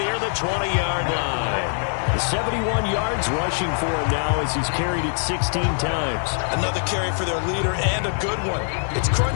the 20-yard line. 71 yards rushing for him now as he's carried it 16 times. Another carry for their leader and a good one. It's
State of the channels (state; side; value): silent; right; 64 dB below the other